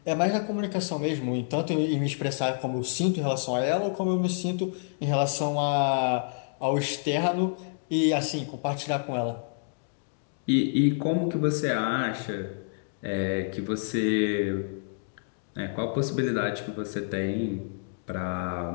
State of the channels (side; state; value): right; silent; digital silence